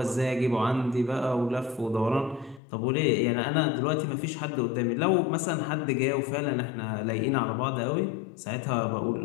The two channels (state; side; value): drops out; right; at 2.6 s